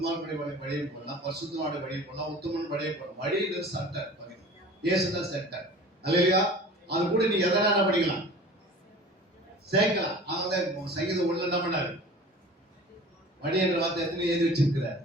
வழியும் போடலாம், பரிசுத்தவானுடைய வழியும் போடலாம், உத்தமன் வழியும் போடலாம். வழி என்பது சென்டர். இயேசுதான் சென்டர். அல்லேலூயா. அது கூட நீ எதனா என்ன பண்ணிக்கலாம்? சேர்க்கலாம். அவங்க சங்கீதம் உள்ள என்ன பண்ணாரு? வழி என்ற வார்த்தை எத்தனை எழுதி வச்சிருக்கிறார்?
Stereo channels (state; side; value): normal; both; correlation 0.42